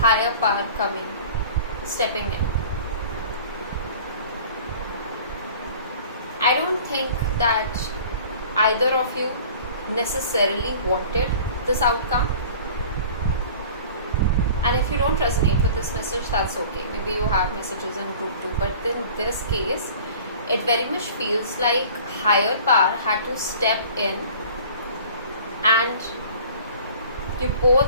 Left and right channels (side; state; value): both; inverted; correlation -0.45